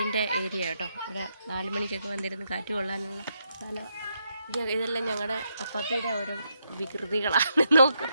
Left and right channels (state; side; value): inverted; both; correlation -0.79